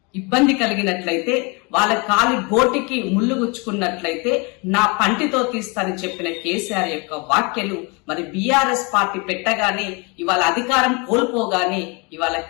ఇబ్బంది కలిగినట్లయితే, వాళ్ళ కాలి గోటికి ముళ్ళు గుచ్చుకున్నట్లయితే నా పంటితో తీస్తానని చెప్పిన కేసీఆర్ యొక్క వ్యాఖ్యలు మరి బీఆర్ఎస్ పార్టీ పెట్టగానే ఇవాళ అధికారం కోల్పోగానే ఇవాళ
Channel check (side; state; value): right; quieter; 30.3 dB